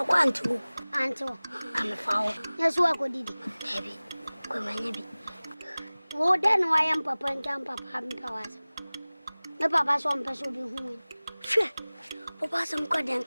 one to Anto. I'm a foul. Yes, what would it? Heavy. Come on, heavy. Oh, then why am Papa and Papa having powers? The Papa's one person will be home. Sure. Papa, some good and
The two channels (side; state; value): both; inverted; correlation -0.99